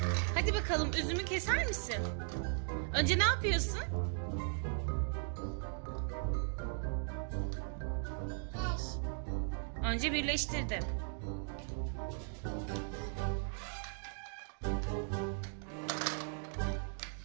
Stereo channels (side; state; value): left; silent; 53 dB below the other